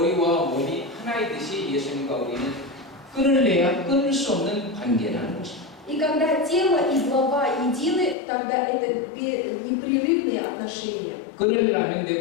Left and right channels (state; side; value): drops out; right; at 8.2 s